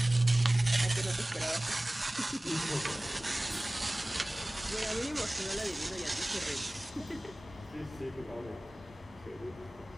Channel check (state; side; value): normal; both; correlation 0.98